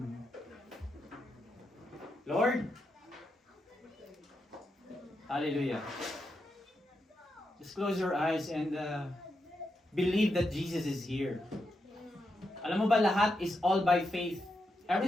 Lord, hallelujah. Just close your eyes and believe that Jesus is here. Alam mo ba, lahat is all by faith.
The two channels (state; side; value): normal; both; correlation 0.85